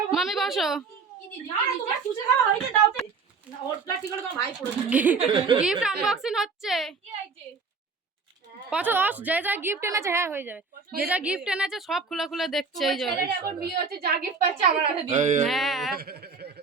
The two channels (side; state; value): left; quieter; 4.8 dB